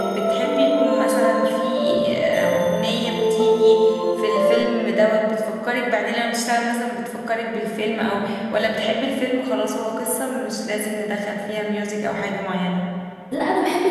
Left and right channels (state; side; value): identical; both; correlation 1.00